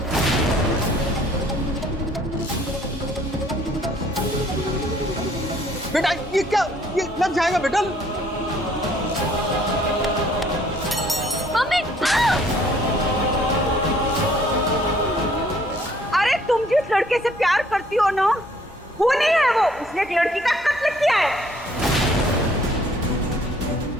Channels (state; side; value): normal; both; correlation 0.60